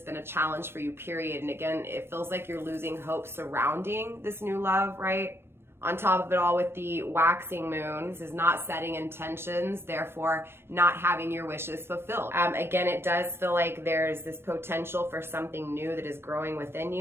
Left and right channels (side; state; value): left; late; 0.12 ms